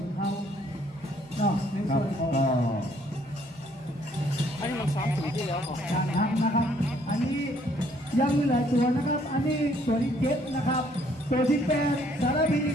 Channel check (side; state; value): both; normal; correlation 0.64